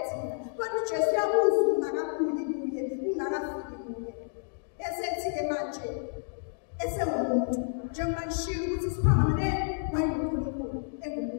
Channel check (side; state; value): right; silent; digital silence